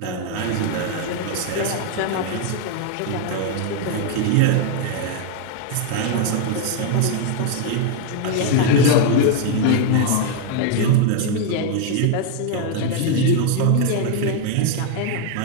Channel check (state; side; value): different; both; correlation 0.00